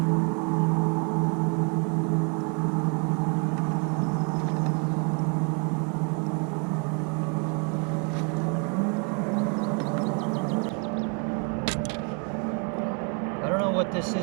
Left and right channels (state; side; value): quieter; left; 35.2 dB